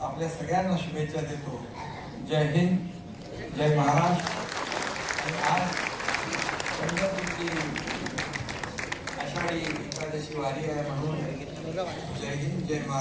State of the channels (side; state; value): both; identical; correlation 1.00